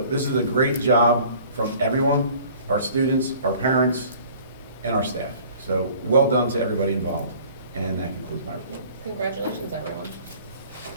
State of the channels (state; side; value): inverted; both; correlation -0.50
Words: this is a great job from everyone, our students, our parents, and our staff. So well done to everybody involved. And that concludes my report. Congratulations, everyone.